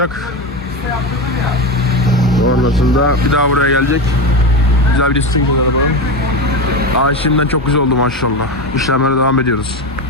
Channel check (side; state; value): both; normal; correlation 0.19